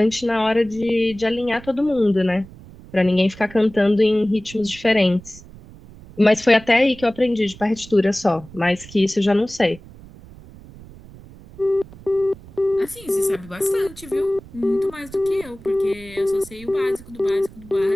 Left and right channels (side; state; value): right; noise; rumble, 19 dB below the sound